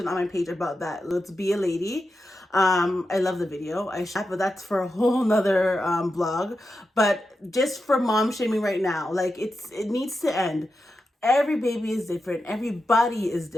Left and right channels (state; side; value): normal; both; correlation 0.89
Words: on my page about that. Let's be a lady. I love the video. But that's for a whole nother vlog. But just for mom shaming right now, like, it needs to end. Every baby is different. Everybody is